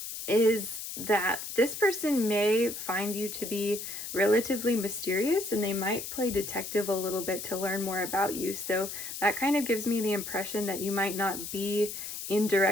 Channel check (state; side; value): noise; left; hiss, 7 dB below the sound